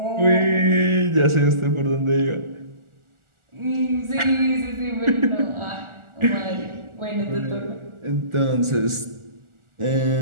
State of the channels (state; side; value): late; left; 1.4 ms